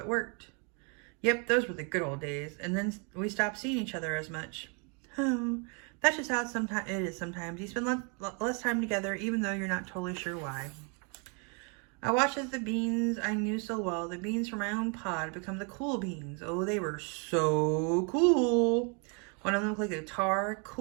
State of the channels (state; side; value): quieter; left; 36.3 dB